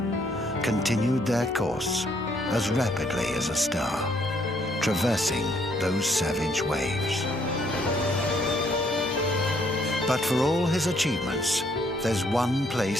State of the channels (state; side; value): normal; both; correlation 0.68